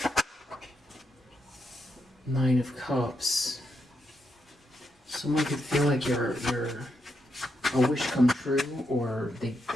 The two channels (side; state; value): both; normal; correlation 0.81